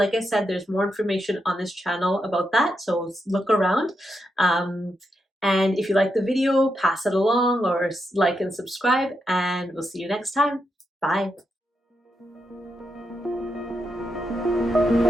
I said, there's more information on this channel about that. So look around. And if you like the video, pass it along or like and subscribe, and we'll see you next time. Bye.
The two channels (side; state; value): both; normal; correlation 0.84